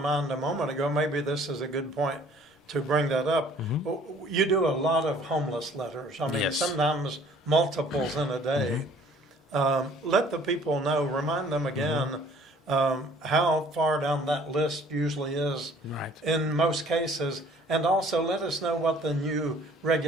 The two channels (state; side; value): normal; both; correlation 0.55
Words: a moment ago. Maybe this is a good point to bring that up. You do a lot of homeless letters. I mean, Yes. sometimes multiples in a day. Let the people know, remind them again how far down that list usually is Right. in most cases. And also let us know what the new